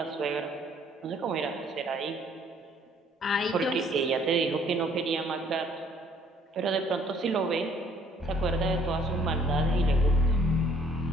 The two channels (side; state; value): both; normal; correlation 0.61